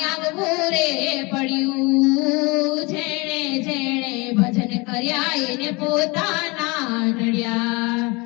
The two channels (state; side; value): quieter; right; 26.5 dB